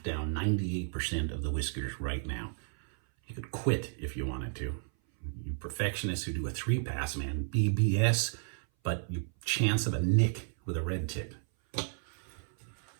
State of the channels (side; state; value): left; silent; 56 dB below the other